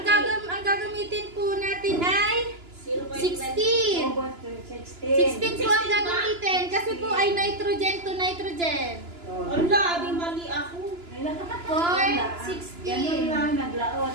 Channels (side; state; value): left; late; 2.9 ms